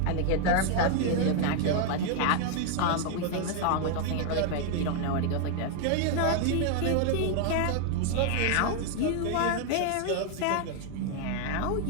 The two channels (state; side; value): different; both; correlation 0.00